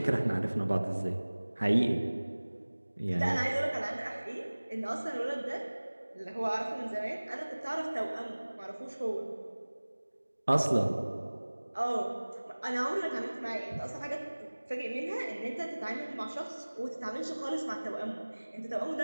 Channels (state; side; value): inverted; both; correlation -1.00